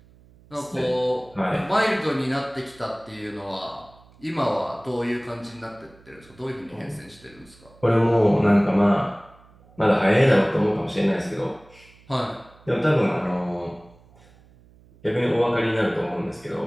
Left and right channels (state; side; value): noise; right; hum, 27 dB below the sound